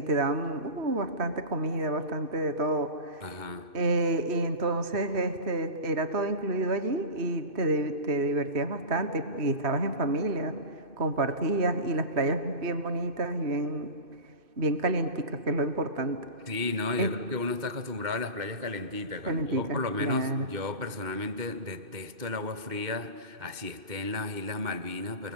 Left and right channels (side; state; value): left; late; 2.6 ms